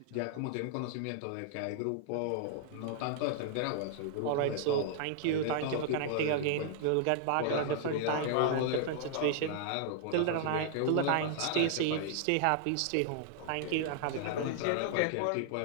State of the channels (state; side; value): different; both; correlation -0.01